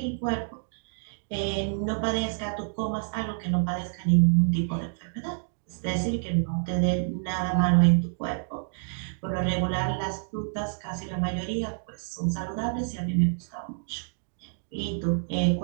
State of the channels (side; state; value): left; silent; digital silence